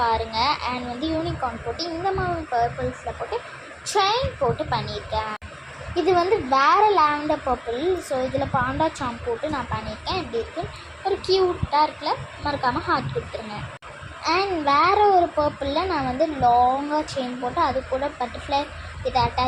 பாருங்கள். அண்ட் வந்து யூனிகார்ன் போட்டு இந்த மாதிரி பர்பிள்ஸில் போட்டு செயின் போட்டு பண்ணியிருக்கேன். இது வந்து வேறு லாவெண்டர் பர்பிள். ஸோ இதில் பாண்டா சாம் போட்டு நான் பண்ணியிருக்கேன். எப்படி இருக்குன்னு ஒரு க்யூட்டாக இருக்குல்ல, மறக்காமல் ஹார்ட் கொடுத்துருங்க. அண்ட் வேறு ஒரு பர்பிளில் நான் வந்து லாங்காக செயின் போட்டு அது கூட பட்டர்ஃப்ளை இதை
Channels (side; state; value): both; identical; correlation 1.00